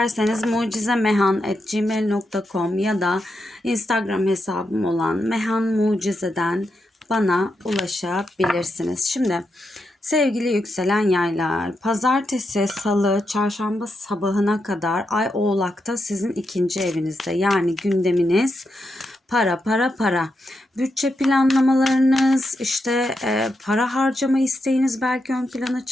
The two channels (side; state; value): both; normal; correlation 0.84